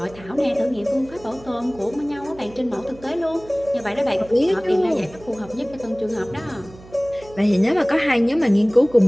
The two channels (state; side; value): noise; right; hum, 20 dB below the sound